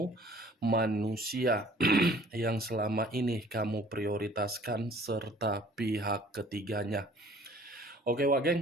manusia yang selama ini kamu prioritaskan, serta pihak ketiganya. Oke, Wak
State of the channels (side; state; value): both; normal; correlation 0.53